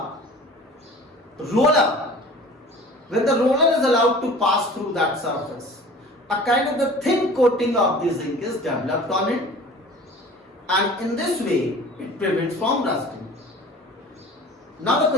roller, when the roller is allowed to pass through that surface, a kind of the thin coating of the zinc is developed on it, and in this way it prevents from rusting. Now the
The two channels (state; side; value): normal; both; correlation 0.43